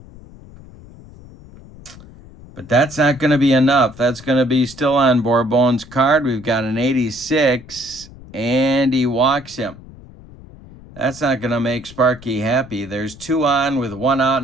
But that's not going to be enough. That's going to be still on Bourbon's card. We've got an 86, and he walks him. That's not going to make Sparky happy. There's 2 on with 1 out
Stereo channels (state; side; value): noise; left; rumble, 20 dB below the sound